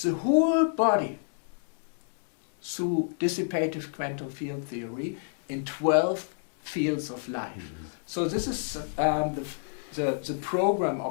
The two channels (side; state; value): right; silent; digital silence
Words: the whole body through dissipative quantum field theory in 12 fields of life. So this is the program